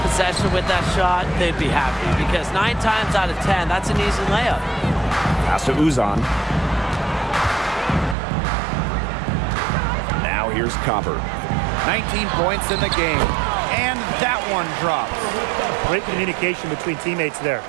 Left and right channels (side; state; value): left; drops out; at 8.2 s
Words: possession with that shot, they'd be happy because 9 times out of 10, that's an easy layup. Pass to Uzan. Now here's Copper. 19 points in the game. And that one drops. Great communication between teammates there.